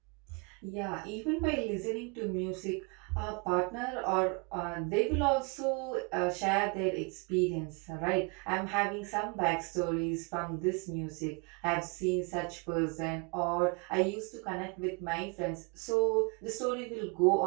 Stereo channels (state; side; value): quieter; left; 31.7 dB